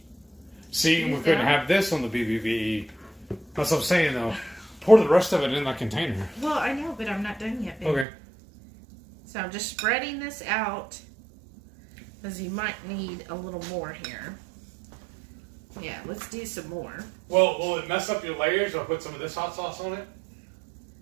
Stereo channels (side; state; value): left; drops out; at 8.1 s